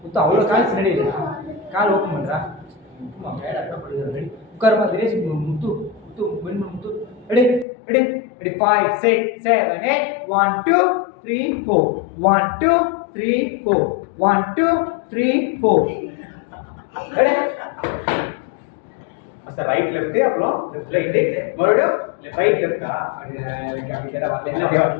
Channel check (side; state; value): right; drops out; at 7.7 s